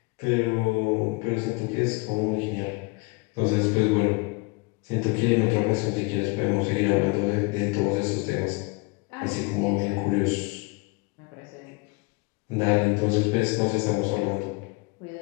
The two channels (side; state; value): right; quieter; 27.2 dB